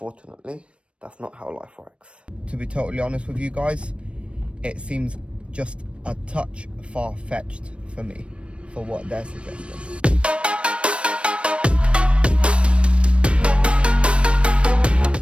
that's not how life works. To be totally honest with you guys, it seems just a touch far-fetched for me, for what they're suggesting.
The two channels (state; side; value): late; left; 0.060 ms